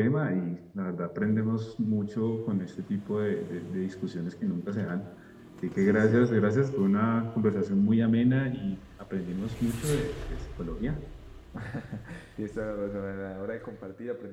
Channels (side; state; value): both; identical; correlation 1.00